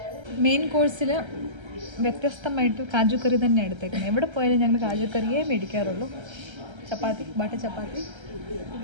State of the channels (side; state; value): left; late; 1.3 ms